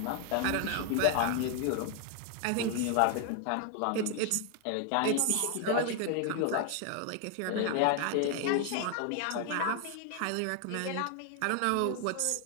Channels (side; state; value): both; different; correlation 0.00